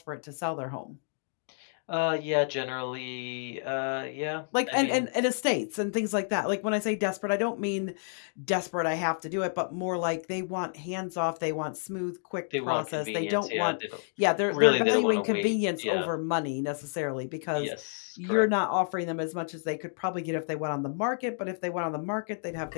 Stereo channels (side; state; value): right; silent; digital silence